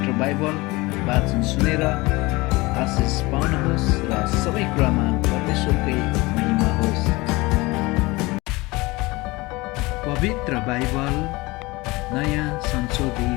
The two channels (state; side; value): quieter; right; 22.5 dB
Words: बाइबल वाचन सुनेर आशिष पाउनुहोस् र सबै कुरामा परमेश्वरकै महिमा होस्। पवित्र बाइबल नयाँ